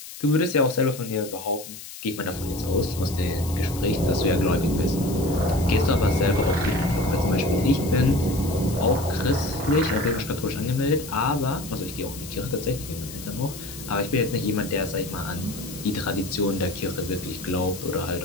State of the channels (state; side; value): noise; left; hiss, 13 dB below the sound